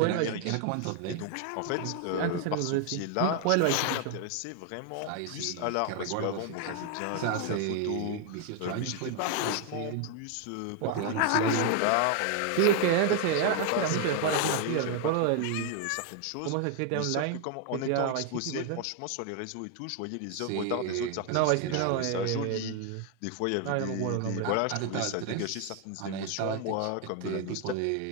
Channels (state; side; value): different; both; correlation 0.00